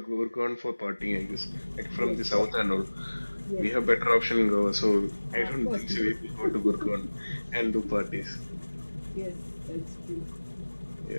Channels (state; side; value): inverted; both; correlation -1.00